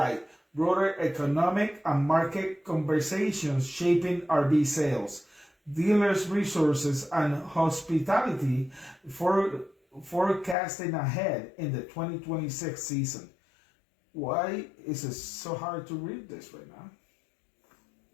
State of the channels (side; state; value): right; drops out; at 10.6 s